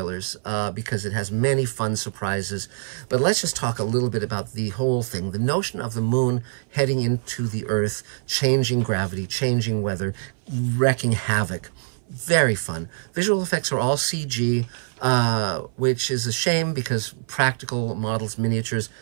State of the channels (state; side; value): silent; left; 59 dB below the other